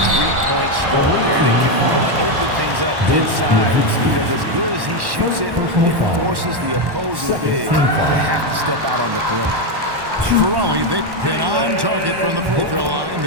stroke there. It can really open things up inside because as good as he shoots it, it forces the opposing big to have to step out on the perimeter. For Raleigh, they've been on target from the free throw line.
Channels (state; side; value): late; left; 1.1 ms